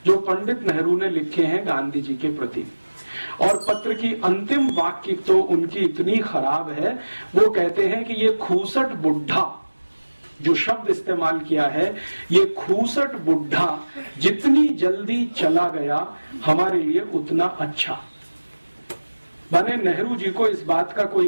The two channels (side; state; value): both; inverted; correlation -1.00